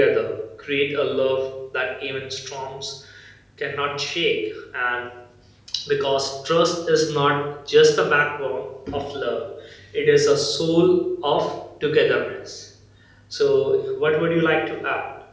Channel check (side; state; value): both; identical; correlation 1.00